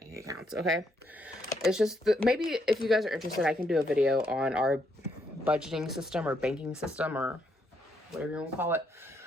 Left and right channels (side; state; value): both; normal; correlation 0.75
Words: accounts. Okay, it's just maybe if you guys are interested, I can do a video on our budgeting system or banking system or whatever you want to call it.